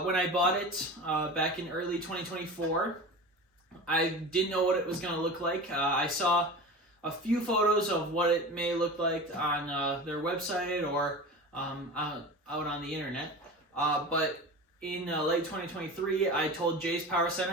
I bought it back in early 2024, I didn't know what it was gonna look like. I saw a few photos of what it may look like on their website or out on the internet, but in late 2023, I told Jay's Power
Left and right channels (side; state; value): both; normal; correlation 0.32